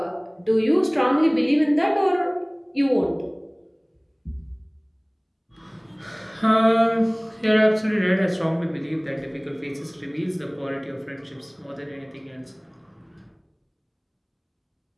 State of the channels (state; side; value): identical; both; correlation 1.00